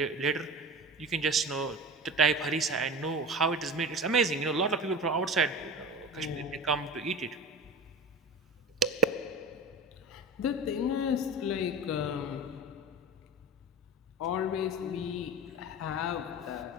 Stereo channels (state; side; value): normal; both; correlation 0.31